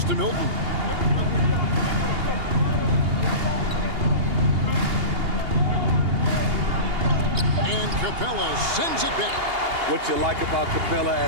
to Milton. And Capella sends it back. What you like about Capella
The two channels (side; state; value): left; late; 2.8 ms